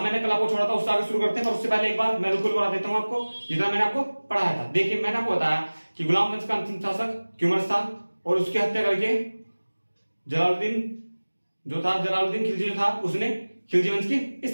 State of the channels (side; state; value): both; inverted; correlation -1.00